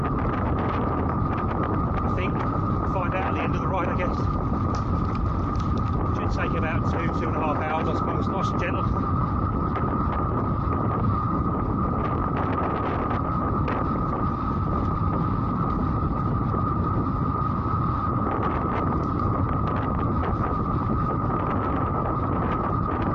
I think, we'll find out at the end of the ride, I guess. Take about 2.5 hours, I suppose, nice and gentle.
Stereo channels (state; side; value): identical; both; correlation 1.00